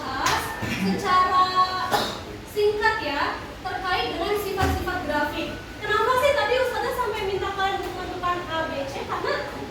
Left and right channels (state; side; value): identical; both; correlation 1.00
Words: secara singkat ya terkait dengan sifat-sifat grafik. Kenapa sih tadi Ustazah sampai minta kalian untuk menentukan A, B, C? Karena